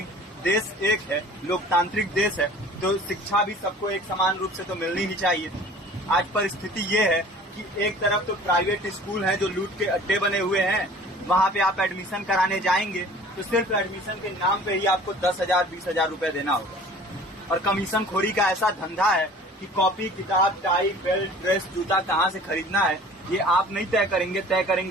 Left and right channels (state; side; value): normal; both; correlation 0.46